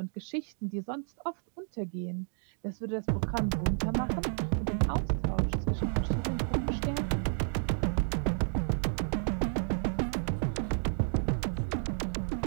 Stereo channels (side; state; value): left; silent; 57 dB below the other